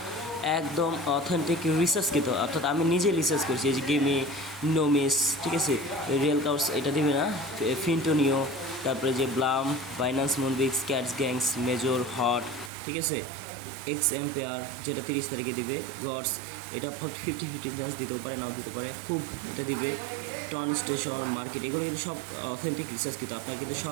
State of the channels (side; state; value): left; drops out; at 12.7 s